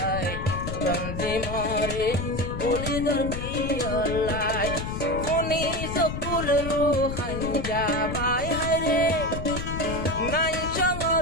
তঞ্জি মরে বলি দরকিয়ালাই কোনি সকুল রুহান যাবাই হায়রে নাই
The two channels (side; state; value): left; noise; rumble, 6 dB below the sound